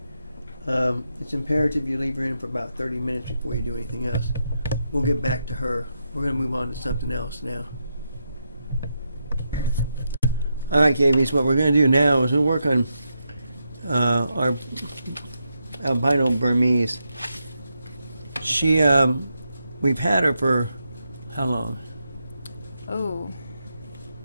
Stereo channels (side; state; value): both; inverted; correlation -0.84